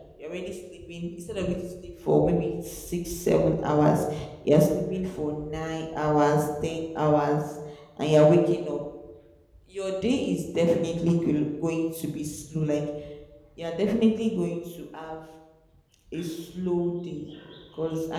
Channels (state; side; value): identical; both; correlation 1.00